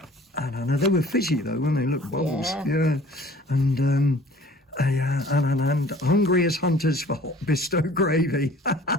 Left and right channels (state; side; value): normal; both; correlation 0.50